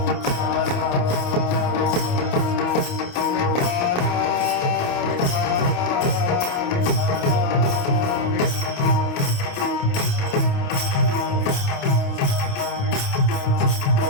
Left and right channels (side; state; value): right; late; 28 ms